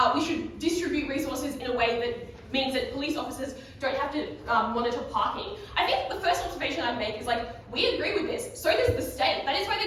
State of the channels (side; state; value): both; identical; correlation 1.00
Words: we should distribute resources in a way that means that police officers don't have to monitor parking. I think the first observation I'd make is like, we agree with this, so does the state. That is why